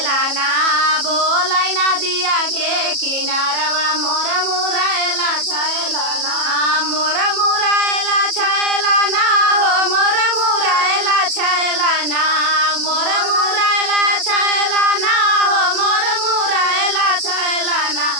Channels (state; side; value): late; left; 37 ms